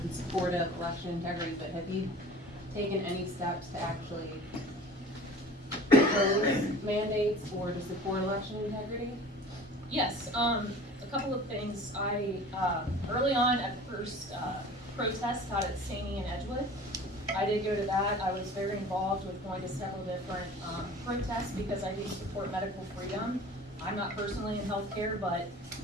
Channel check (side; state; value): both; normal; correlation 0.42